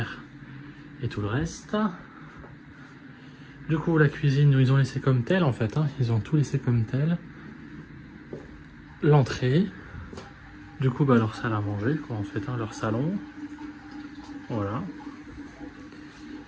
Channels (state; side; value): identical; both; correlation 1.00